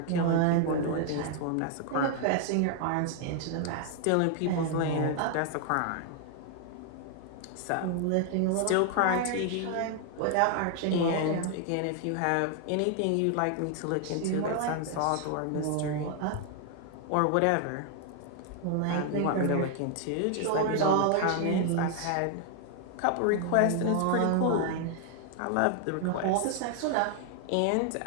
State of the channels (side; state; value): both; different; correlation 0.00